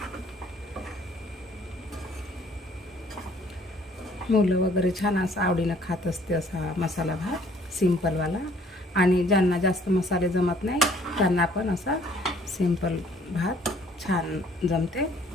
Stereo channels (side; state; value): both; normal; correlation 0.59